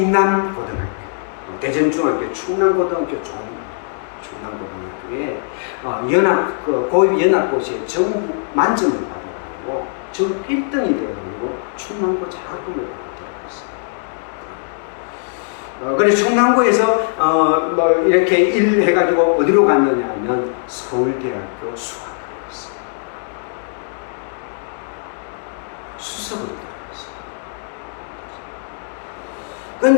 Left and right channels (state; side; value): silent; right; digital silence